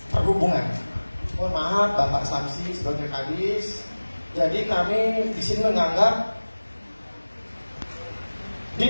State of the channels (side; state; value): both; inverted; correlation -1.00